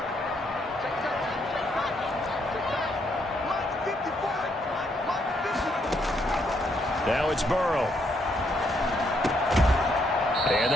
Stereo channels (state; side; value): normal; both; correlation 0.74